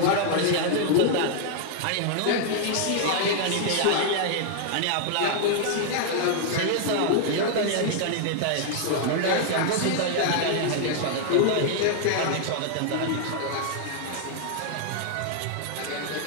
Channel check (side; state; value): both; different; correlation 0.00